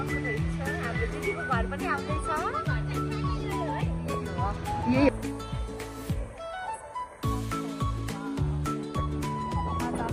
हाम्रो दिदीको घर पनि आउँदैछ।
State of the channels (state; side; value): identical; both; correlation 1.00